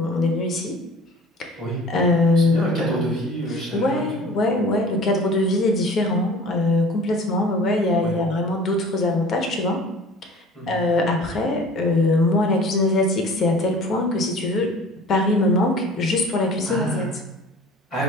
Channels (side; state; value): both; normal; correlation 0.45